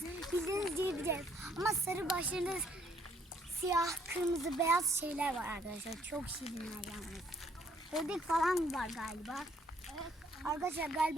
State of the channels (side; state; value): both; normal; correlation 0.66